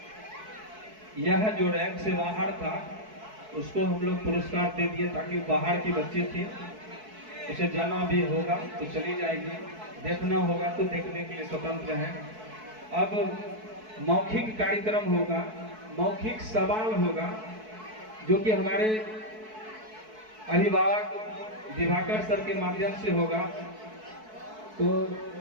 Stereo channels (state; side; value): late; left; 4.6 ms